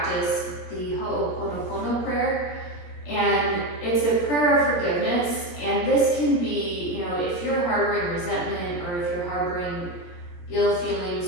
the Ho'oponopono prayer. And it's a prayer of forgiveness. And this can be, if you're harboring resentment or if you're harboring ill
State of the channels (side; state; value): right; late; 17 ms